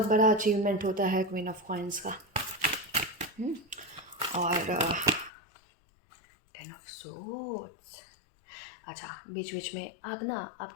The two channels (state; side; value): drops out; right; at 5.3 s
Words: बड़ा अचीवमेंट होता है क्वीन ऑफ कॉइंस का। और 10 ऑफ सोर्ड्स। अच्छा, बीच बीच में आप ना,